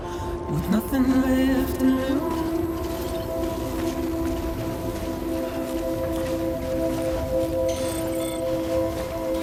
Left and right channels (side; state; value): both; identical; correlation 1.00